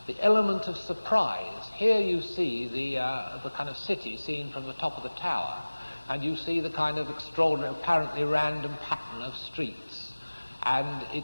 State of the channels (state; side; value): inverted; both; correlation -1.00